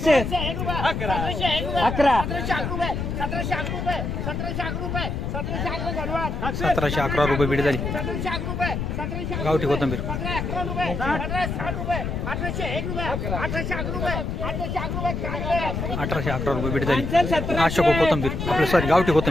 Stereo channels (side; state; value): left; noise; rumble, 3 dB below the sound